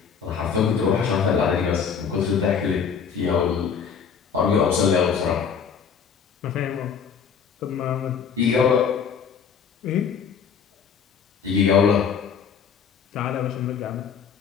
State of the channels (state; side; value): quieter; right; 6.8 dB